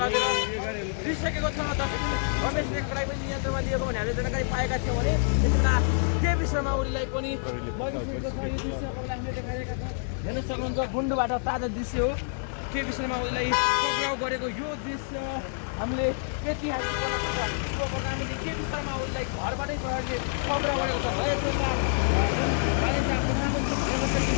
लगेर लिइसकेको छ। रमेश नेकपालाई पनि नियन्त्रणमा लिएको भने हामीले जानकारी पाएका थियौँ भने त्यसमा केपी शर्मा ओलीलाई पनि लगिसकेको छ। यो दृश्य हामीले देखाइरहेका छौँ। हेर्न सक्नुहुन्छ गुन्डोबाट ताजा दृश्य हो। केपी शर्मा ओलीलाई पक्राउ गरेको यो दृश्य हामीले ऐतिहासिक प्रधानमन्त्री केपी शर्मा ओलीलाई घरबाटै प्रहरीले पक्राउ गरेको छ।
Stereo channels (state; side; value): silent; right; digital silence